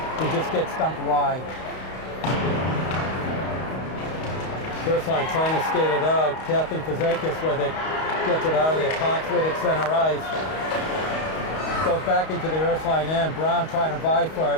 and just gets dumped wide. Ursuline trying to skate it out. Kathleen Fazakis with it, gets it out of there. Cox with it, center ice. Goes back into the Ursuline end. Brown trying to vie for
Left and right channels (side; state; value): right; late; 31 ms